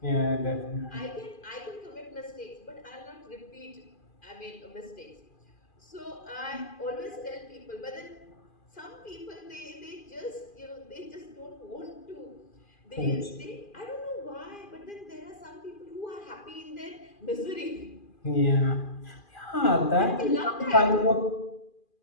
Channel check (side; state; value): right; late; 2.4 ms